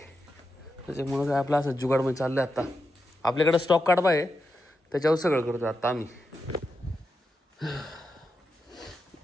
त्याच्यामुळं काय आपलं असं जुगाडमध्ये चाललं आहे आत्ता आपल्याकडं स्टॉक कडबा आहे त्याच्यावर सगळं करतो आत्ता आम्ही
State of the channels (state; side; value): normal; both; correlation 0.87